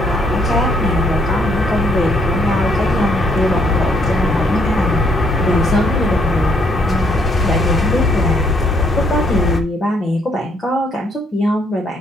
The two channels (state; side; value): normal; both; correlation 0.69